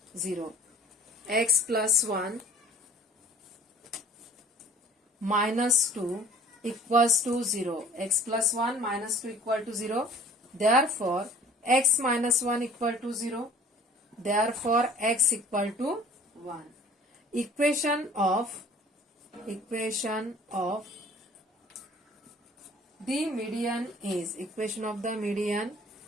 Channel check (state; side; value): normal; both; correlation 0.49